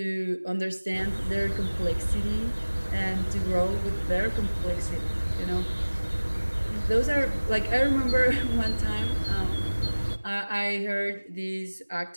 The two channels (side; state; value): both; inverted; correlation -1.00